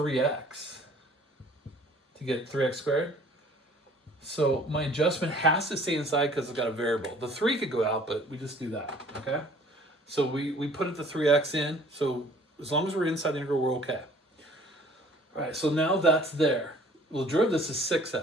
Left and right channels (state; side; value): normal; both; correlation 0.54